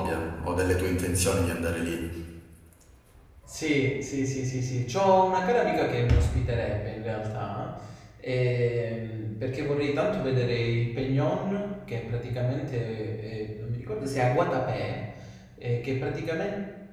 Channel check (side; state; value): both; identical; correlation 1.00